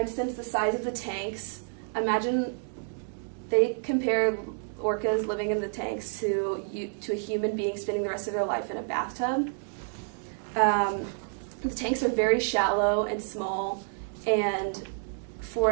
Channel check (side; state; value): left; silent; digital silence